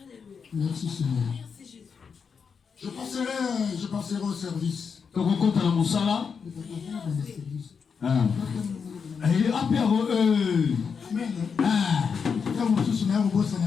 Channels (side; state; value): right; quieter; 6.0 dB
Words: Merci Seigneur. Je passerai au service.